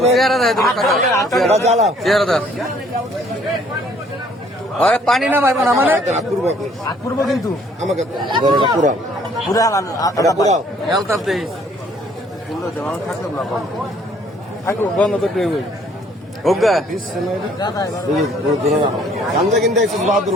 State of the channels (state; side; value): normal; both; correlation 0.60